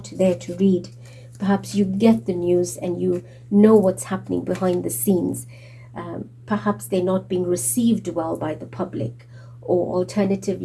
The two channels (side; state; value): both; identical; correlation 1.00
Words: there to read. Perhaps you get the news and you know what's happening behind the scenes. Perhaps they're not being received well by the public, or